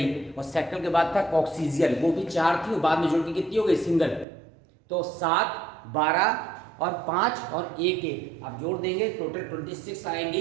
और सैक्रल के बाद था कॉक्सीजियल, वो भी 4 थी, और बाद में जुड़ के कितनी हो गई, सिंगल। तो 7, 12 और 5 और 1 आप जोड़ देंगे, टोटल 26 आएंगी।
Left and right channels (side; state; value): left; drops out; at 4.2 s